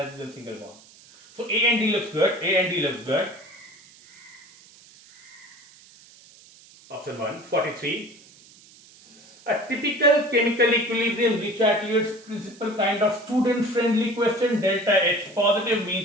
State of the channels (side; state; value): right; noise; hiss, 24 dB below the sound